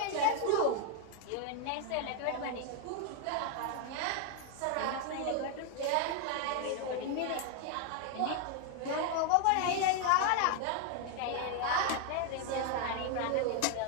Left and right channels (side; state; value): both; different; correlation 0.01